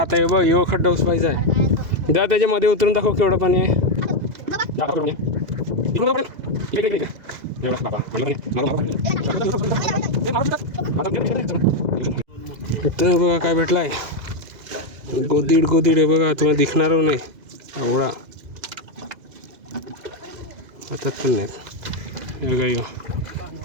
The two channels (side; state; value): left; late; 2.0 ms